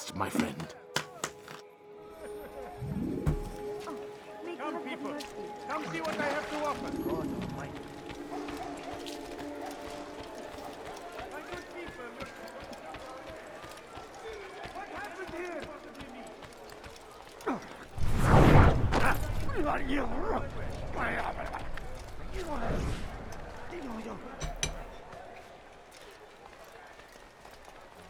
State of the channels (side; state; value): both; identical; correlation 1.00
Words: my friend. Come, people. Come see what I have to offer. God almighty. My good people, what happened here?